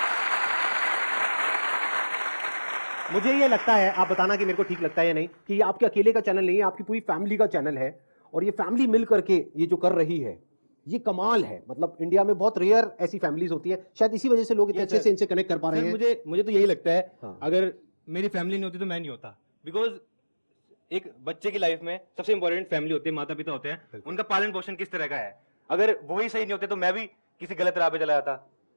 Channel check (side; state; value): both; inverted; correlation -1.00